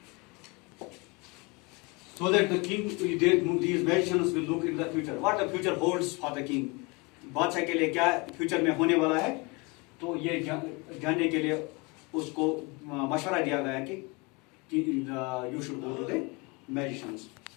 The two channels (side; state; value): right; quieter; 27.9 dB